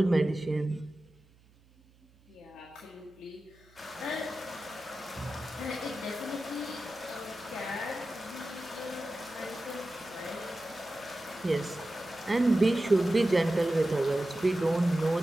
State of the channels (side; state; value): right; noise; hum, 29 dB below the sound